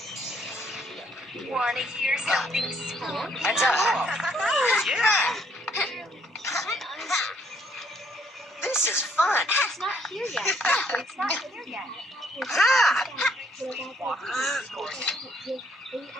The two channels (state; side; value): normal; both; correlation 0.67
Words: Want to hear something spooky? Heads up! Yeah! This is fun! It's not here yet. It's not here yet. Ha!